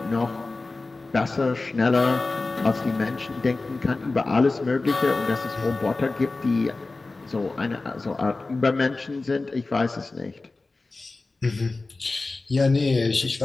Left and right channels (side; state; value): right; quieter; 3.4 dB